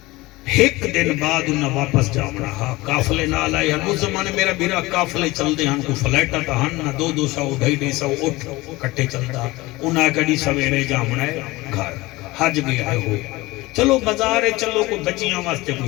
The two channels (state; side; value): quieter; right; 20.7 dB